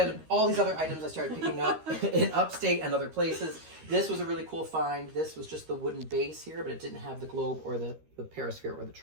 all these other items I started picking up in upstate and other places. This was a really cool find. This was just the wooden base here, but it didn't have the globe or the Paris Fair or the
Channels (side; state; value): left; late; 13 ms